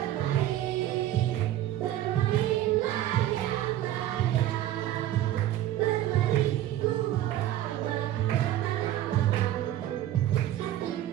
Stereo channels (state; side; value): quieter; left; 12.9 dB